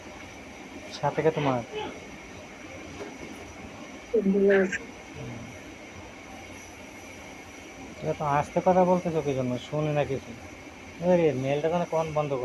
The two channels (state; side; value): identical; both; correlation 1.00